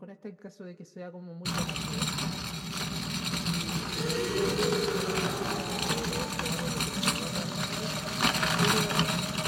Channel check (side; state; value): both; identical; correlation 1.00